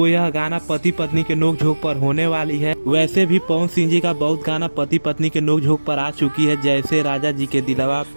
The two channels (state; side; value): inverted; both; correlation -1.00